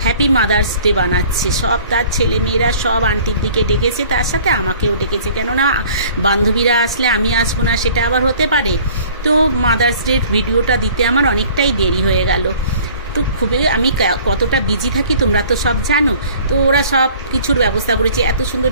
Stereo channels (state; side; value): inverted; both; correlation -0.51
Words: হ্যাপি মাদার্স ডে বানাচ্ছে। সব তার ছেলেমেয়েরা সব আন্টির দিকে ডেকেছে, তার সাথে আমাকেও ডেকেছে, কেননা বান্ধবীরা আসলে আমি আসবো না সেটা আবার হতে পারে। তো মাদার্স ডের ভিডিওটা দিতে আমার অনেকটাই দেরি হয়ে গেল। তো খুবই আমি কতটা বিজি থাকি তোমরা তো সব জানো। তো ওরা সব কিছুর ব্যবস্থা করেছে, এত সুন্দর